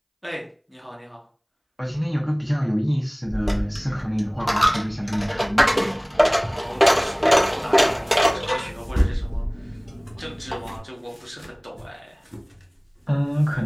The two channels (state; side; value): identical; both; correlation 1.00